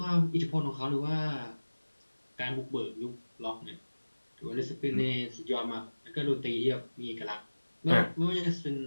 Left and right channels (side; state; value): both; inverted; correlation -1.00